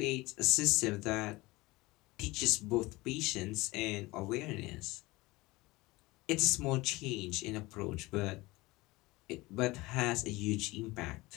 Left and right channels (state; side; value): quieter; right; 21.3 dB